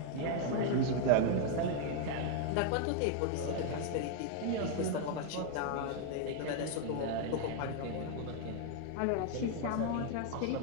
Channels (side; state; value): both; different; correlation 0.00